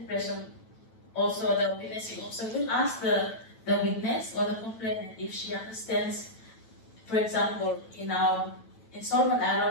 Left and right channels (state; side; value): late; right; 9.1 ms